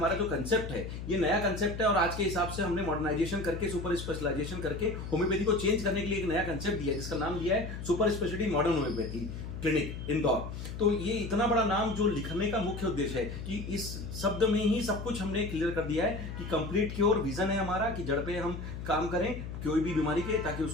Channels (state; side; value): noise; left; hum, 8 dB below the sound